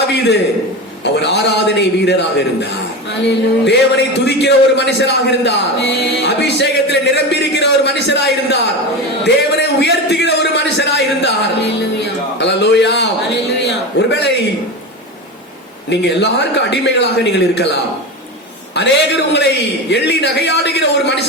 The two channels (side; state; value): both; normal; correlation 0.23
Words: அவர் ஆராதனை வீரராக இருந்தார். தேவனை துதிக்கிற ஒரு மனுஷராக இருந்தார். அபிஷேகத்தில் நிரம்பி இருக்கிற ஒரு மனுஷராக இருந்தார். தேவனை உயர்த்துகிற ஒரு மனுஷராக இருந்தார். அல்லேலூயா. ஒருவேளை நீங்க எல்லாருக்கும் அடிமைகளாக நீங்கள் இருக்கலாம். அநேகர் உங்களை எள்ளி நகையாடுகிற ஒரு